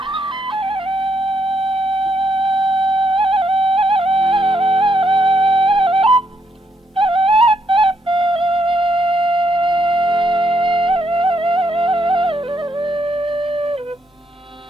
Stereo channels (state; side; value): normal; both; correlation 0.76